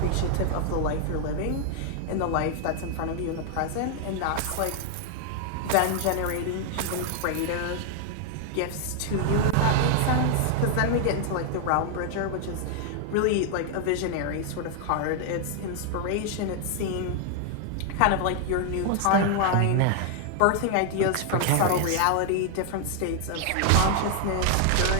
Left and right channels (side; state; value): both; different; correlation 0.00